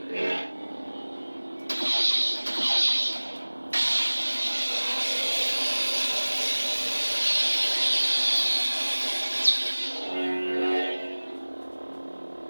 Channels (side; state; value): both; inverted; correlation -1.00